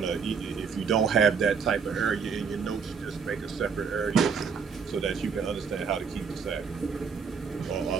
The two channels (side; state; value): left; quieter; 5.9 dB